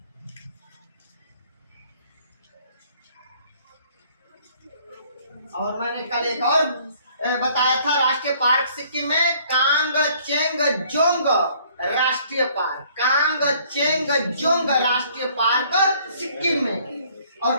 और मैंने कल एक और बताया था राष्ट्रीय पार्क सिक्किम में, कांगचेंगजोंग राष्ट्रीय पार्क, कांगचेंगजोंग राष्ट्रीय पार्क सिक्किम में। और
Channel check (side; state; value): both; inverted; correlation -0.59